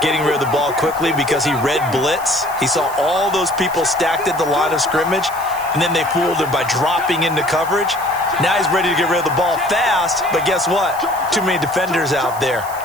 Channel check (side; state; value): right; noise; hiss, 16 dB below the sound